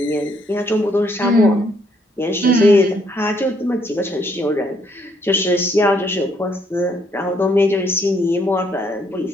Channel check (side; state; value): both; normal; correlation 0.69